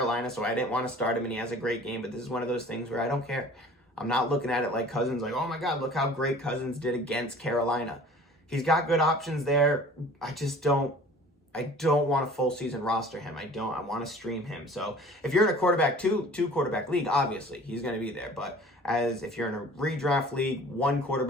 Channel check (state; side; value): normal; both; correlation 0.46